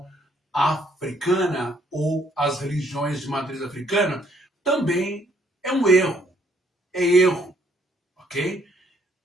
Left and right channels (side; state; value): both; normal; correlation 0.67